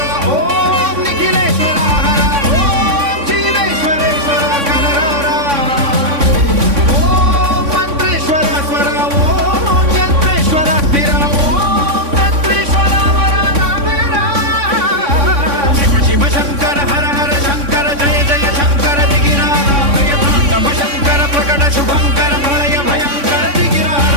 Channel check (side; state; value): left; late; 3.5 ms